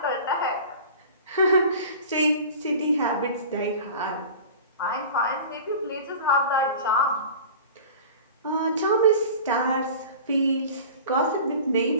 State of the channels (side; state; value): both; inverted; correlation -0.38